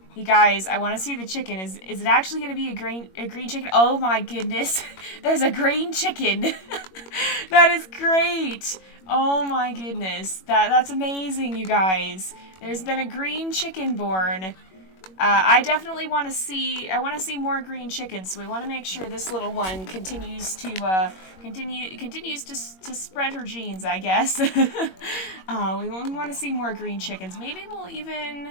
You guys, I want to see the chicken. Is it actually going to be a green chicken? Oh my goodness. There's a green chicken. That is great. Oh my goodness. That's amazing, you guys. There's been a green chicken born. I definitely want to see, more green chickens, so we want to make sure this little one continues to, to spread her genes, I guess. We want to see more green chickens. Maybe we'll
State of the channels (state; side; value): late; right; 21 ms